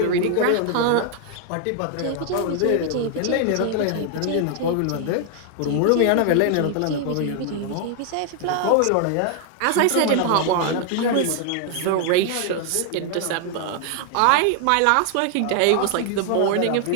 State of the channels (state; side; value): different; both; correlation 0.00